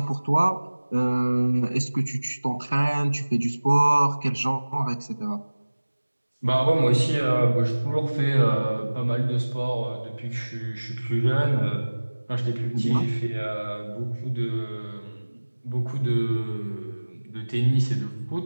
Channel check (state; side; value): inverted; both; correlation -1.00